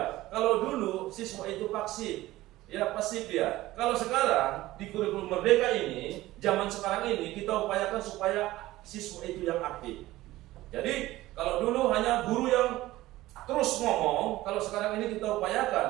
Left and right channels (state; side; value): quieter; left; 16.9 dB